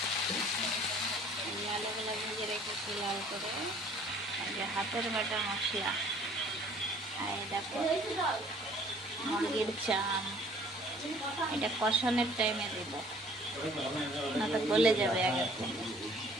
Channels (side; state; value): both; normal; correlation 0.55